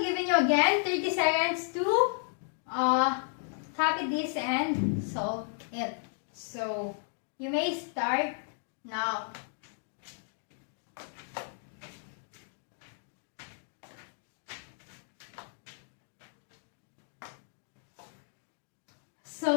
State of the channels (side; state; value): right; silent; 55 dB below the other